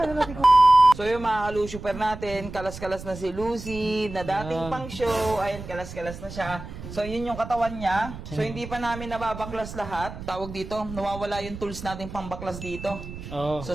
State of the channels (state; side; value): noise; right; rumble, 12 dB below the sound